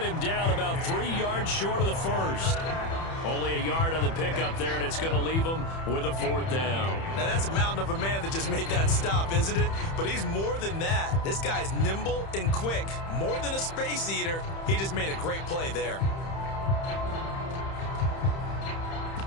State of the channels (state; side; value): late; right; 31 ms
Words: him down about 3 yards short of the first. Only a yard on the pickup there, and it's going to leave him with a 4th down. Now, that's a mountain of a man that just made that stop, isn't it? But he's more than that. This guy's nimble and quick. More than a space eater. He just made a great play there.